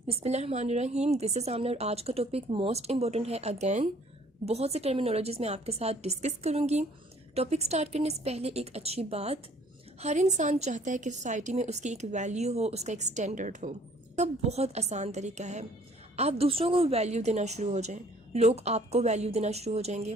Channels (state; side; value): normal; both; correlation 0.57